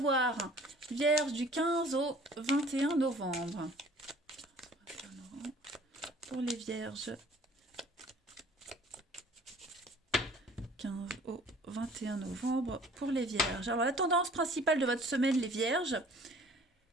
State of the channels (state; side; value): normal; both; correlation 0.51